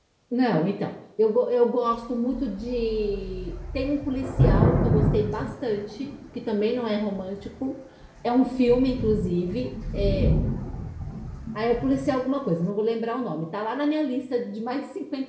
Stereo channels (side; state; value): both; identical; correlation 1.00